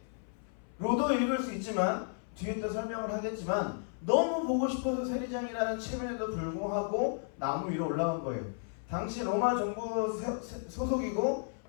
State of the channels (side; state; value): right; silent; 55 dB below the other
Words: 로도 읽을 수 있지만 뒤에 또 설명을 하겠지만 너무 보고 싶어서 세리장이라는 체면에도 불구하고 나무 위로 올라간 거예요. 당시 로마 정부 소속이고